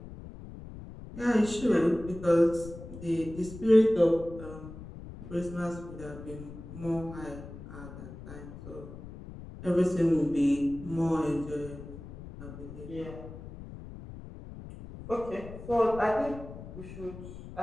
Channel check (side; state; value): left; noise; rumble, 13 dB below the sound